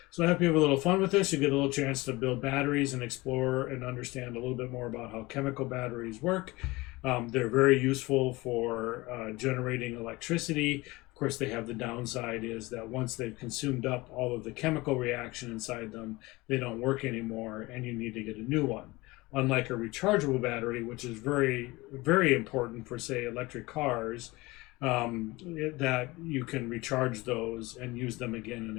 So I hope you have a little fun with this. You get a little chance to build batteries and explore and understand a little bit more about how chemical batteries work. They're very useful for generating electricity. Of course, they have the downside is that once they've consumed up all of the chemical reaction inside them, they don't work anymore and you need to get a new one. Unlike a rechargeable battery, which is very, very important for, say, electric cars, that you can recharge those and use them again and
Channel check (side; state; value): right; quieter; 21.8 dB